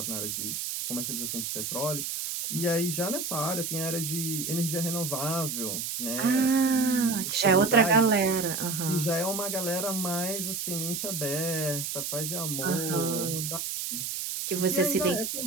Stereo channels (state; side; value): noise; right; hiss, 3 dB below the sound